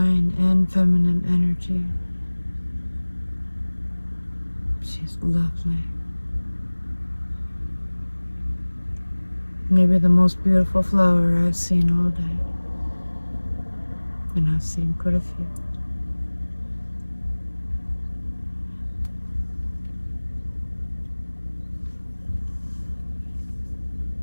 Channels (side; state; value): both; inverted; correlation -1.00